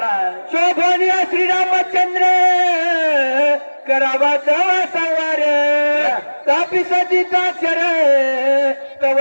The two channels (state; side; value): inverted; both; correlation -1.00